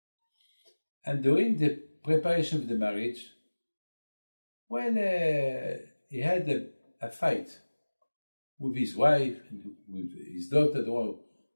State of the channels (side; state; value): both; inverted; correlation -1.00